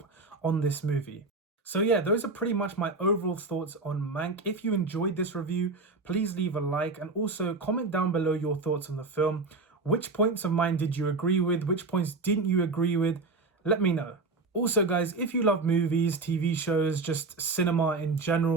on this movie. So yeah, those are pretty much my overall thoughts on Mank. If you enjoyed this review, please leave a like and also comment down below your thoughts on the film. Which points of mine did you agree with? Which points didn't you agree with? Let me know. Also guys, if you love movies, TV shows, just cinema in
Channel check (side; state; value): left; quieter; 3.7 dB